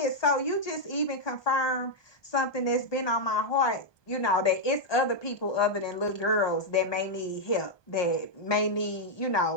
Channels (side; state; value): right; late; 1.2 ms